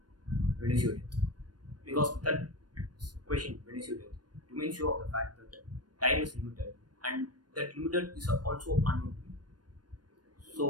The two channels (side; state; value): left; late; 0.69 ms